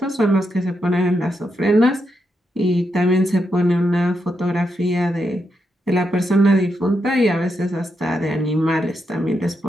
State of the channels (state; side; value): normal; both; correlation 0.83